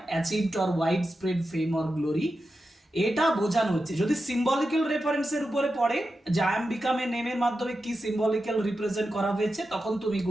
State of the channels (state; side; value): normal; both; correlation 0.90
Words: achieved or widespread fame or glory, এটা বোঝানো হচ্ছে যদি সিম্বলিক্যাল রেফারেন্সের উপরে পড়ে, যে আই এম বিকাম এ নেমের মাধ্যমে কি সিম্বলিক্যাল রিপ্রেজেন্ট করা হয়েছে, তখন তুমি